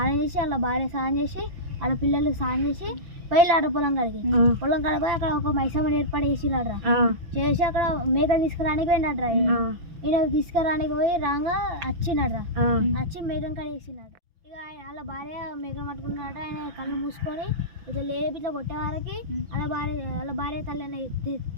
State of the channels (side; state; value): left; late; 6.0 ms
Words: చేసి వాళ్ళ భార్య స్నానం చేసి వాళ్ళ పిల్లలకి స్నానం చేసి పోయిలాడ్రా పొలం కాడికి. పొలం కాడ పోయి అక్కడ ఒక మైసమ్మని ఏర్పాటు చేసిరాడ్రా. చేసి అక్కడ మేకలు తీసుకురానికి పోయినట్రా. ఈయన తీసుకురానికి పోయి రాగా వచ్చినడ్రా. వచ్చి మేకం కాడ వేసినట్రా. ఇక వాళ్ళ భార్య మేకను పట్టుకున్నాడు. ఆయన కళ్ళు మూసుకొని ఇట్లా లేపి ఇట్లా కొట్టే వారికి వాళ్ళ భార్య తల్లి